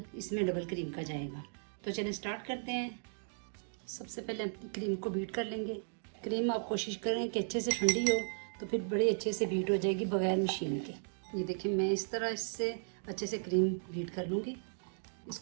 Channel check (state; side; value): silent; left; digital silence